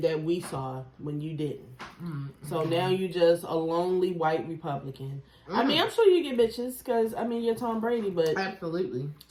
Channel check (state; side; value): identical; both; correlation 1.00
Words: that we saw when you didn't. So now you just a lonely white Republican. I mean, I'm sure you get bitches because, I mean, you're Tom Brady, but absolutely,